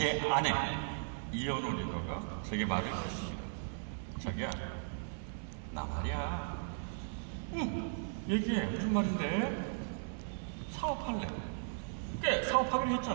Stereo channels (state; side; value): silent; left; 53 dB below the other